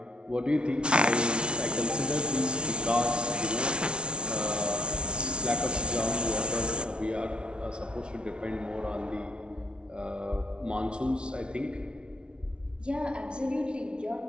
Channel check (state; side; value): late; left; 0.057 ms